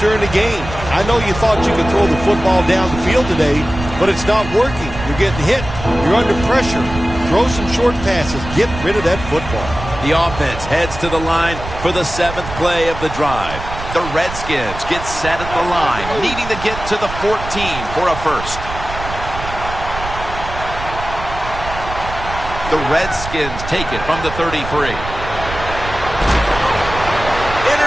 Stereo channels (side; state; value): right; noise; rumble, 10 dB below the sound